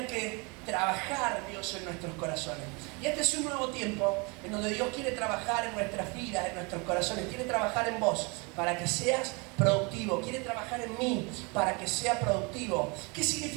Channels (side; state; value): left; quieter; 29.9 dB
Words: que trabajar Dios en nuestros corazones. Y este es un nuevo tiempo en donde Dios quiere trabajar en nuestras vidas, en nuestros corazones, quiere trabajar en vos para que seas productivo, quiere trabajar en mí para que sea productivo. ¿Qué